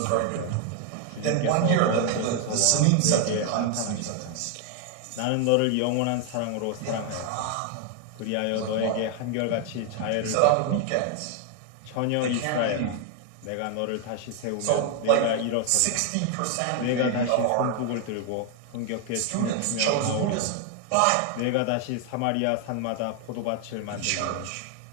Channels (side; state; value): both; different; correlation 0.00